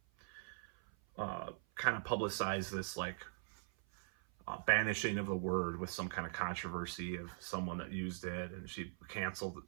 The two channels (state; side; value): silent; left; 50 dB below the other